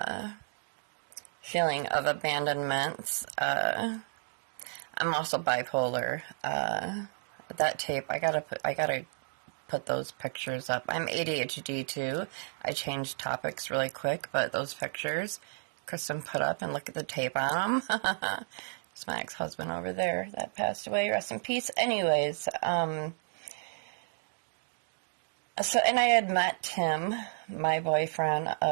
feeling of abandonment. I'm also bipolar. That tape, I gotta put those pictures up. I'm ADHD too. I changed topics really quick, but those pictures Kristen put up, and look at the tape on them. It's my ex-husband over there that passed away. Rest in peace. Anyways, and I had met Tim, my boyfriend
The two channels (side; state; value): left; silent; digital silence